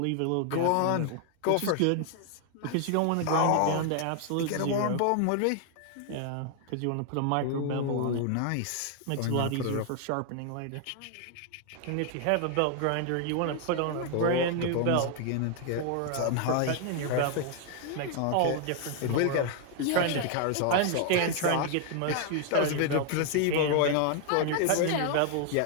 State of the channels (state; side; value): different; both; correlation 0.00